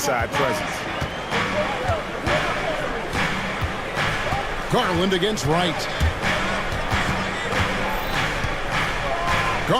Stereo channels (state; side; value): identical; both; correlation 1.00